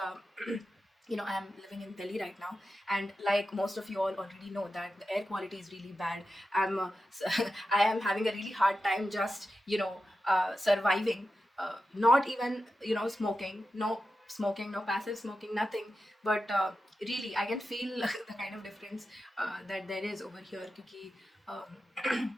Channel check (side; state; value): both; normal; correlation 0.91